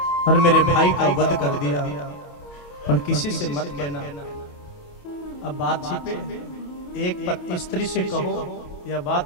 और मेरे भाई का वध कर दिया, पर किसी से मत कहना। अब बात छिपे, एक स्त्री से कहो या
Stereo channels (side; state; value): right; late; 28 ms